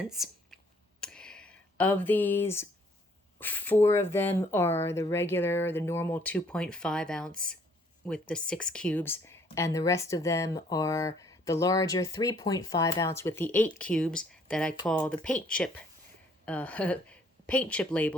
Of these, 4 of them are the normal 2.5 ounce with the 6 cubes, and the rest of them are the larger 3.5 ounce with the 8 cubes that I call the paint chip paint chip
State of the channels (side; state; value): both; normal; correlation 0.62